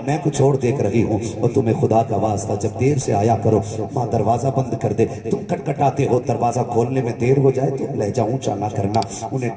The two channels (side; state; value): both; identical; correlation 1.00